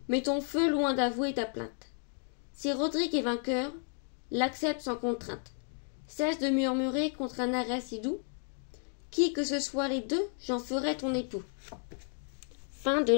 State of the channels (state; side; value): silent; right; 56 dB below the other